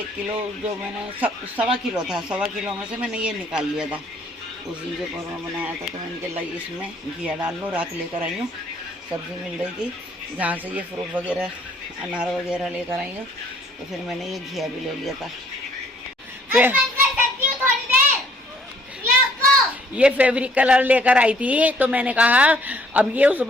किलो, जो मैंने 1.25 किलो था, 1.25 किलो में से मैंने ये निकाल लिया था, उसी जो कोरमा बनाया था। तो मैंने कहा इसमें घिया डाल लो। रात लेकर आई हूँ, सब्ज़ी मिल रही थी जहाँ से ये फ्रूट वगैरह, अनार वगैरह लेकर आई हूँ, तो फिर मैंने ये घिया भी ले लिया था। फिर ये फैब्रिक कलर लेकर आई थी, तो मैंने कहा अब ये उस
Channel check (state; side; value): normal; both; correlation 0.62